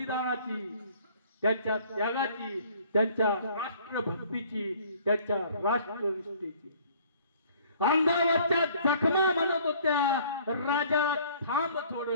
त्यांच्या त्यागाची, त्यांच्या राष्ट्रभक्तीची, त्यांच्या राष्ट्रनिष्ठेची। अंगावरच्या जखमा म्हणत होत्या राजा थांब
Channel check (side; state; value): both; inverted; correlation -0.55